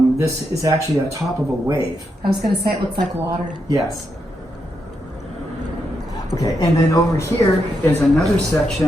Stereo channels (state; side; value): normal; both; correlation 0.82